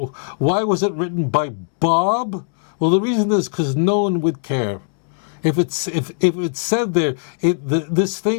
was it written by Bob? Well, the reason is because no one would care. If it said there, this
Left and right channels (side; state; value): right; silent; digital silence